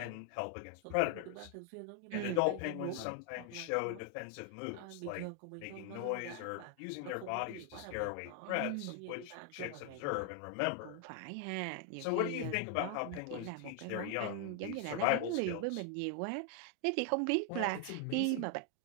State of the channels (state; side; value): different; both; correlation 0.00